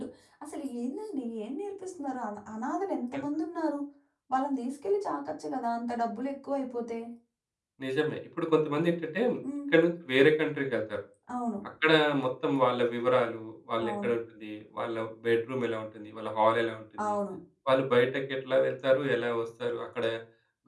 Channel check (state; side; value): identical; both; correlation 1.00